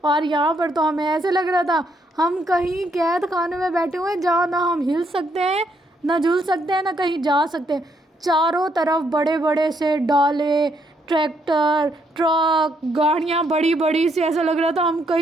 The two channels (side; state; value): both; normal; correlation 0.74